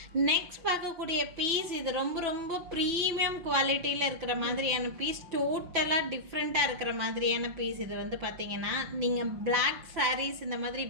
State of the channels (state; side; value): late; left; 6.1 ms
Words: நெக்ஸ்ட் பார்க்கக்கூடிய பீஸ், இது ரொம்ப ரொம்ப ப்ரீமியம் குவாலிட்டியில் இருக்கிற மாதிரியான பீஸ், டோட்டலாக டிஃப்ரெண்ட்டாக இருக்கிற மாதிரியான பீஸ். இது வந்து பார்த்திங்கன்னா நீங்கள் பிளாக் சாரீஸ் இந்த மாதிரி